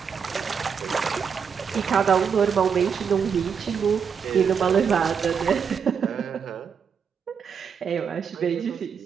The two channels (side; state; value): left; quieter; 6.7 dB